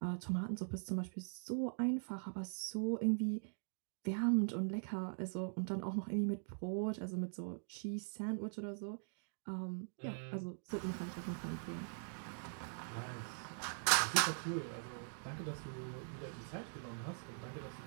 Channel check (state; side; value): silent; left; digital silence